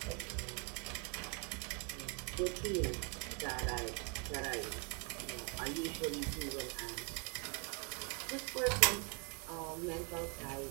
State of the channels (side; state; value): left; quieter; 34.9 dB